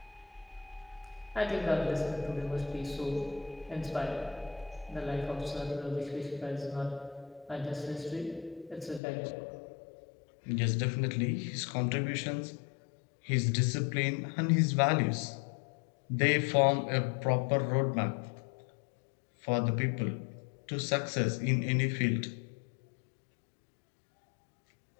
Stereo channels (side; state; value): right; drops out; at 9.0 s